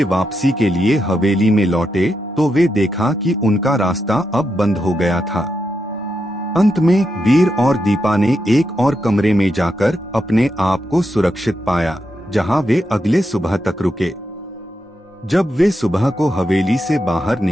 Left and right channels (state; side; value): normal; both; correlation 0.85